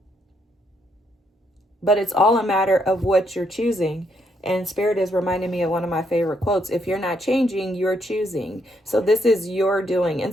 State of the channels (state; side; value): normal; both; correlation 0.75